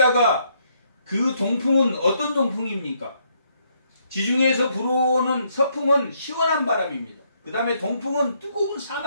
그 동풍은 어떤 동풍입니까? 지중해에서 불어오는 서풍은 시원한 바람입니다. 그 다음에 동풍은 뜨거운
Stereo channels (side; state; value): both; inverted; correlation -0.72